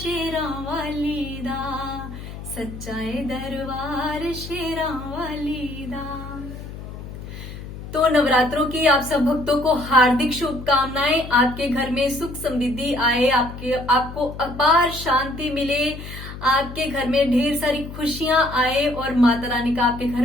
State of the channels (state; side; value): noise; left; hum, 11 dB below the sound